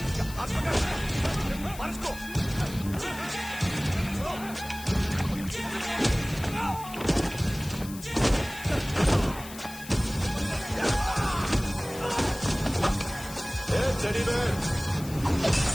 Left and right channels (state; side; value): noise; left; hiss, 15 dB below the sound